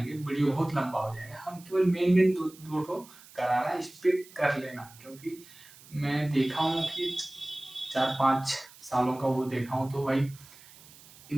वीडियो बहुत लंबा हो जाएगा। हम केवल मेन दो ठो करा रहे हैं, इस पे कर लेना, क्योंकि मैं देखा हूँ कि 4-5 सालों का वो देखा हूँ, तो भाई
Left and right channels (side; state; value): right; noise; hiss, 22 dB below the sound